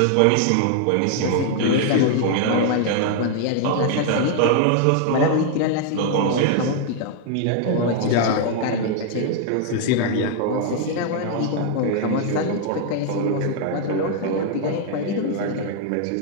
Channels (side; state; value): both; different; correlation 0.00